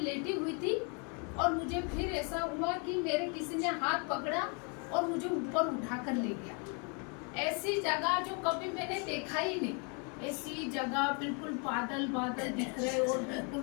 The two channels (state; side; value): quieter; right; 36.2 dB